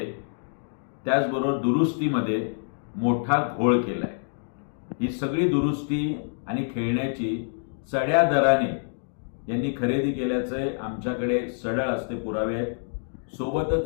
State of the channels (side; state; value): right; silent; digital silence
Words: त्याचबरोबर दुरुस्तीमध्ये मोठा घोळ केलाय। ही सगळी दुरुस्ती आणि खेळण्याची चढ्या दराने यांनी खरेदी केल्याचे आमच्याकडे सढळ असते पुरावे आहेत। सोबतच